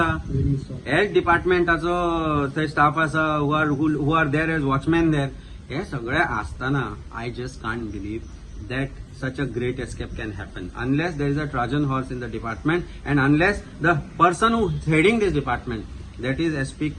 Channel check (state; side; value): identical; both; correlation 1.00